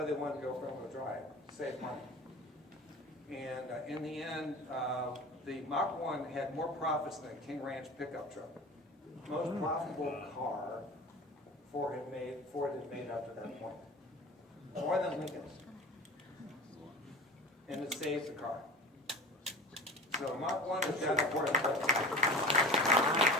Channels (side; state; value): both; normal; correlation 0.35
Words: they wanted to go front-wheel drive, save money. And in the end, the Mach 1 had more profits than a King Ranch pickup truck. Most profitable car Ford had made up to that point. More than Lincoln's. And it saved the car. So Mach 1 is that important. But